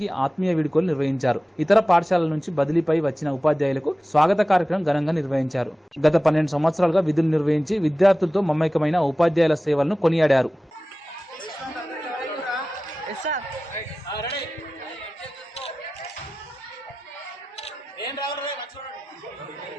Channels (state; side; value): normal; both; correlation 0.96